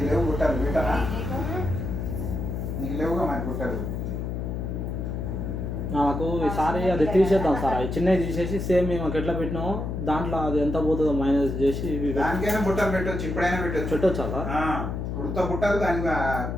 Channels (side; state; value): left; noise; hum, 4 dB below the sound